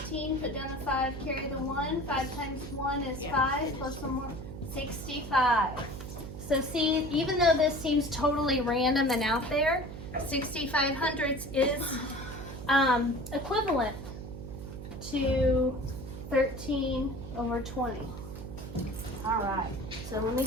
Put down the 5, carry the 1. 5 times 1 is 5, plus 1 more, 65. So see, even though this seems totally random and out there, 65 hundredths is equivalent to 13 over 20. All right, so let me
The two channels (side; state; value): right; noise; hum, 10 dB below the sound